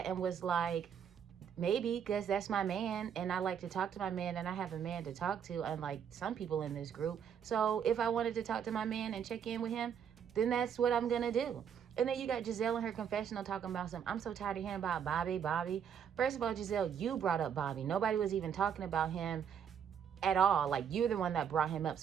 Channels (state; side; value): quieter; left; 8.0 dB